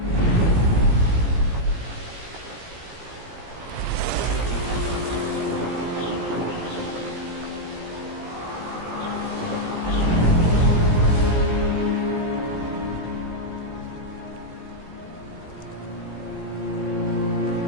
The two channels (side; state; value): left; late; 17 ms